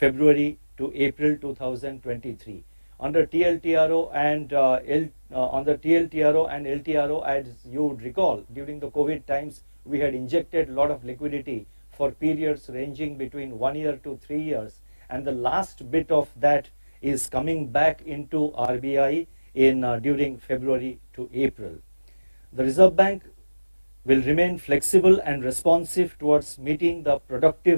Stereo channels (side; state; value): both; inverted; correlation -1.00